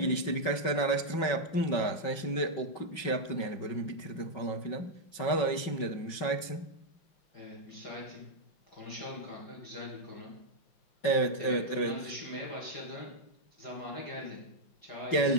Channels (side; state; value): right; late; 5.3 ms